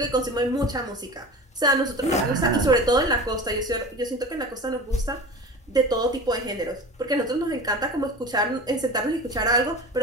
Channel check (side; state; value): both; normal; correlation 0.34